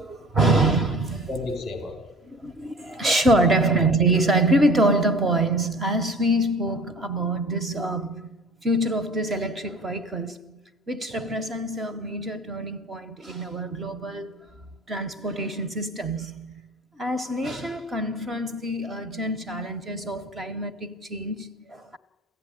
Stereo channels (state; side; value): normal; both; correlation 0.43